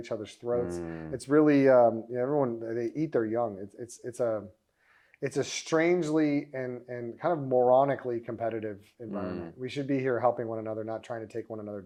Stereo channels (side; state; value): both; identical; correlation 1.00